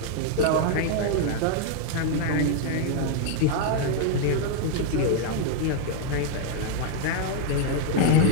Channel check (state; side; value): different; both; correlation 0.00